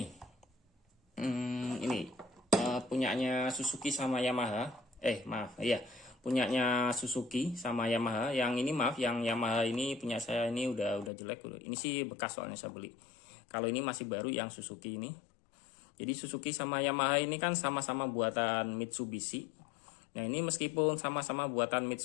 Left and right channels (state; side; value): drops out; right; at 11.1 s